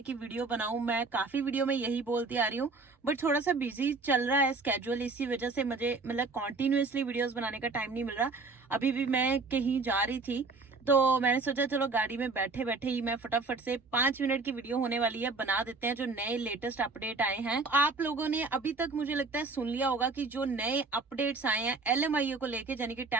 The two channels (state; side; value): quieter; left; 3.9 dB